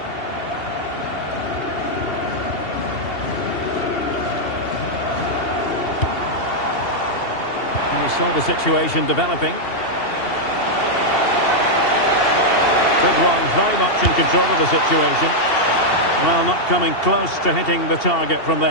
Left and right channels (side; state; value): right; late; 2.7 ms